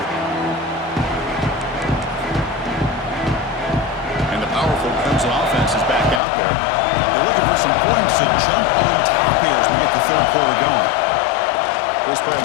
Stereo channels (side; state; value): right; drops out; at 6.2 s